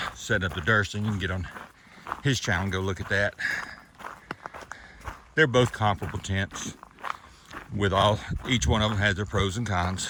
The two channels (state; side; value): identical; both; correlation 1.00